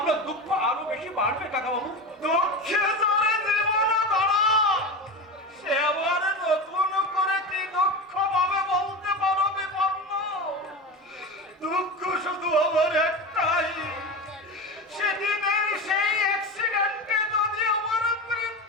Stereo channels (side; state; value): both; normal; correlation 0.25